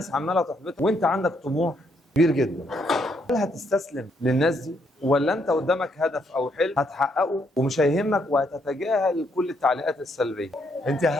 عماله تحبطك وانت عندك طموح كبير جدا. هل هتستسلم للناس دي ولا انت قدامك هدف او حلم هتحققه ومش هيهمك وهتتجاهل كل التعليقات السلبيه؟ انت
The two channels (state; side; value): normal; both; correlation 0.74